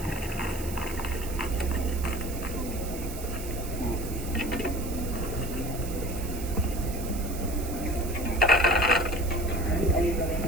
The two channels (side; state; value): right; noise; hiss, 12 dB below the sound